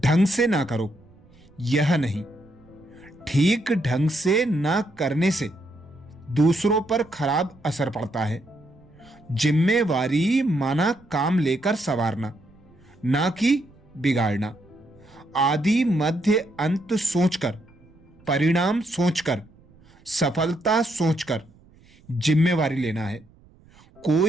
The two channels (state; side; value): noise; right; rumble, 27 dB below the sound